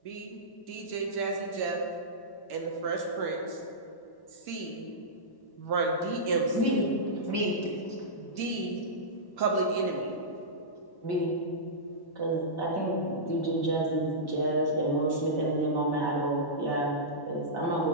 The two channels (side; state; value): right; late; 1.1 ms